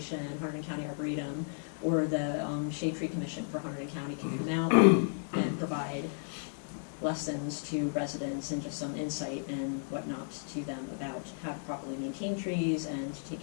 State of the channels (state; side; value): silent; right; digital silence